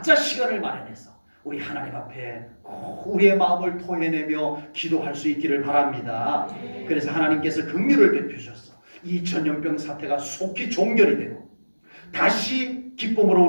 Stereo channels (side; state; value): both; inverted; correlation -1.00